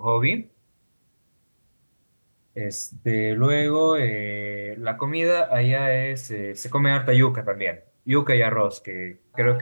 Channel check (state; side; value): inverted; both; correlation -1.00